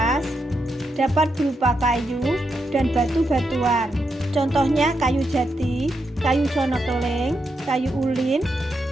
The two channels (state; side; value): normal; both; correlation 0.83